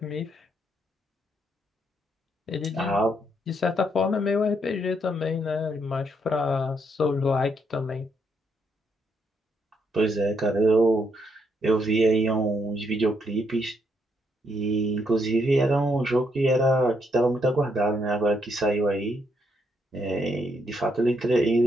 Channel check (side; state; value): both; normal; correlation 0.75